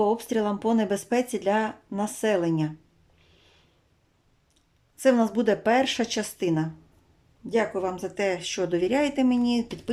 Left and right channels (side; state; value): both; identical; correlation 1.00